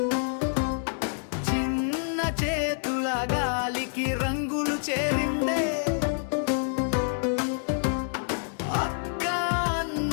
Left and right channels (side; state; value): right; silent; 60 dB below the other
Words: చిన్న చేతుల గాలికి రంగులు చేరిందే అక్క